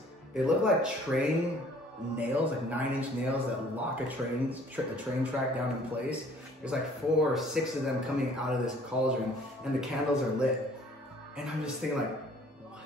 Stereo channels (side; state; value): both; normal; correlation 0.55